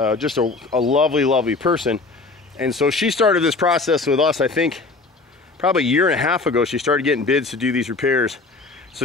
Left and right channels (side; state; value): right; quieter; 3.7 dB